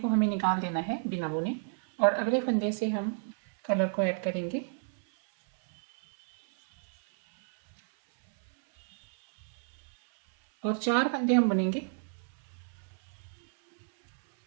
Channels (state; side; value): silent; left; 57 dB below the other